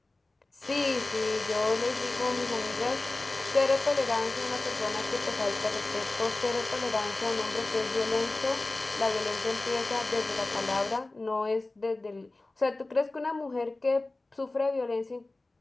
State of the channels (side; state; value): right; quieter; 3.0 dB